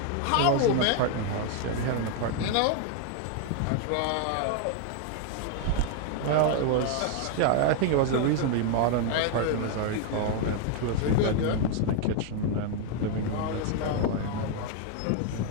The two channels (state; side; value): different; both; correlation 0.00